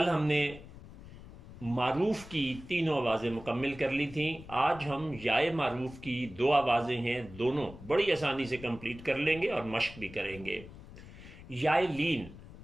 ہم نے معروف کی تینوں آوازیں مکمل کر لی تھیں۔ آج ہم یائے معروف کی دو آوازیں ہیں، دونوں بڑی آسانی سے کمپلیٹ کر لیں گے اور مشق بھی کریں گے۔ یائے لین،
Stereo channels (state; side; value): noise; left; rumble, 16 dB below the sound